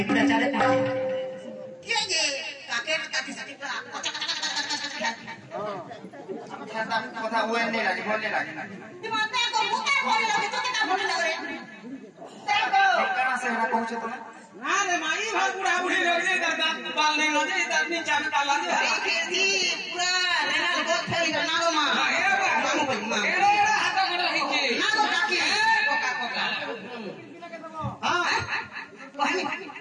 बिना चले के जे काके काकी सटी का खाता কথা ওই নেই লাগে বললে লাগে না दिमाग को मुका बोले लगे तो क्या बोले लगे देखो कहां से हरा पहुंचे तुम ना रे माई भर बुढ़ा बुढ़ी लगे दादा बाल नहीं लगे इधर नीचे में डाला दे खेती पूरा लेना बहुत फैल गया नागो मां नागो भाई मां एड़ा हाथा गड़ा हिके नागो काकी कोका कोका हां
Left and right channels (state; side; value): identical; both; correlation 1.00